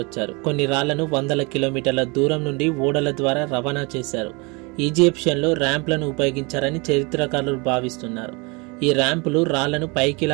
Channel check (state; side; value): quieter; left; 28.8 dB